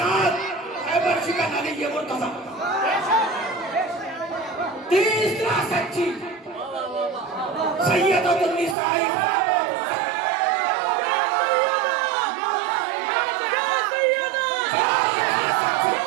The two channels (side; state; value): left; drops out; at 8.8 s